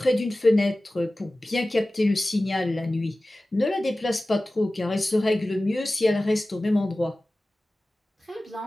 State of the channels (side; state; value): both; normal; correlation 0.97